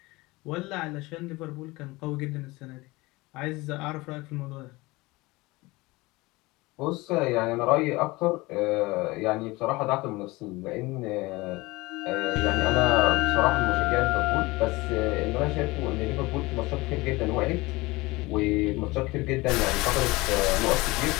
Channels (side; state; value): right; quieter; 22.0 dB